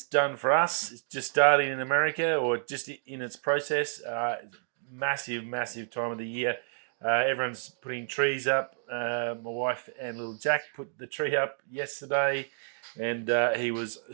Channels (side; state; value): left; silent; digital silence